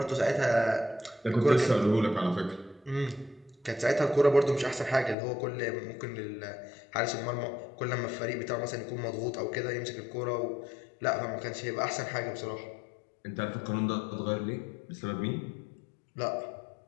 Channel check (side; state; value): right; drops out; at 5.2 s